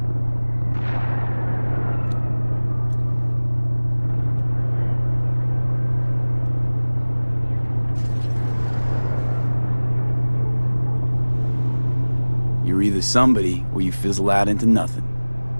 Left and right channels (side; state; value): both; inverted; correlation -1.00